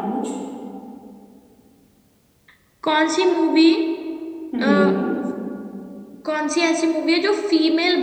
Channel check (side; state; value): both; identical; correlation 1.00